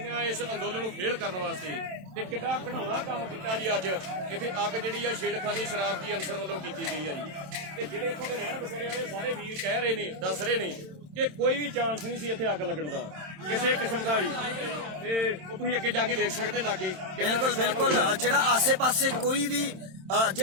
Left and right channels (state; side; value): late; left; 27 ms